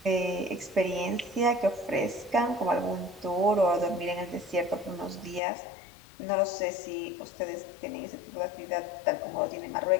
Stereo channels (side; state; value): right; drops out; at 5.4 s